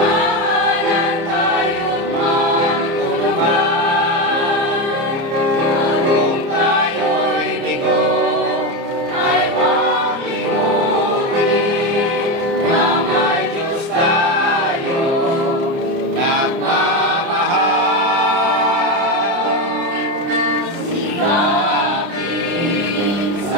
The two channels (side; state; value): left; late; 30 ms